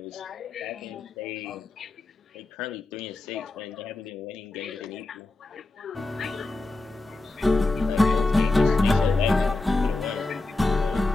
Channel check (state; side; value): quieter; right; 3.1 dB